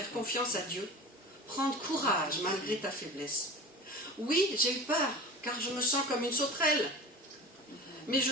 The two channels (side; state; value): both; normal; correlation 0.34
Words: confiance à Dieu, prendre courage malgré ta faiblesse? Oui, j'ai eu peur, car je me sens comme une sauterelle. Mais